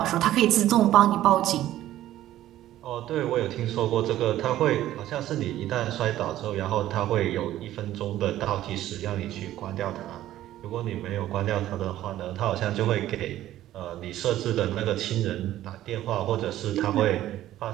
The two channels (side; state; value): left; quieter; 13.6 dB